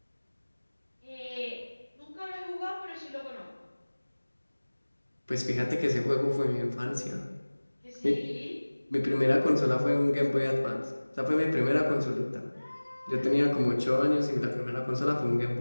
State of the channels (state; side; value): inverted; both; correlation -1.00